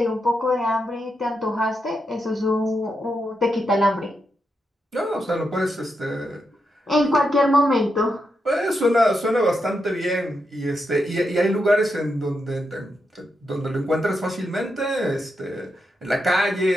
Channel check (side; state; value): both; normal; correlation 0.84